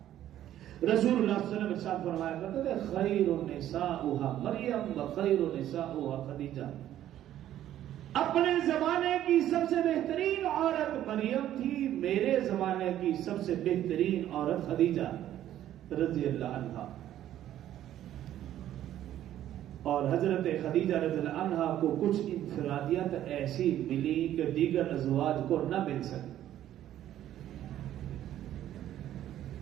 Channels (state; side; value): quieter; left; 12.1 dB